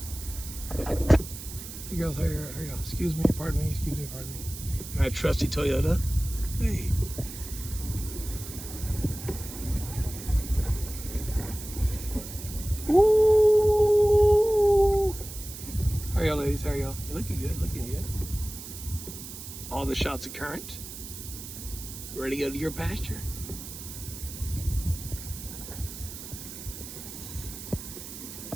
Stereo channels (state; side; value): noise; right; hiss, 11 dB below the sound